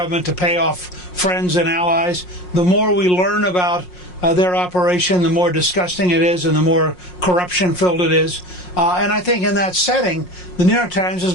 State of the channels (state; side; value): late; right; 5.6 ms